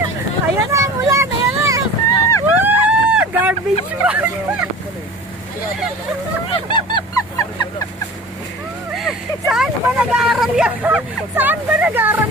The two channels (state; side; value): normal; both; correlation 0.39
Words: Ayan na ang ulan, ayan na. Garbage bag. Saan ba nag-aaral yan? Saan ba nag-aaral